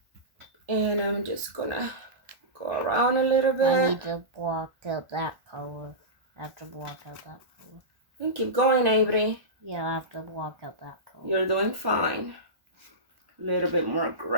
And I'm just gonna go around a little bit. I need to block out that color. I have to block out that color. And keep going, Avery. Yeah, I have to block out that color. You're doing fine. A little bit more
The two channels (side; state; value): left; late; 1.1 ms